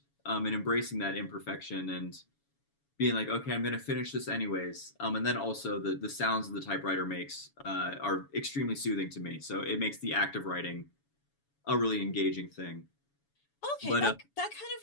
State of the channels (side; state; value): right; late; 7.1 ms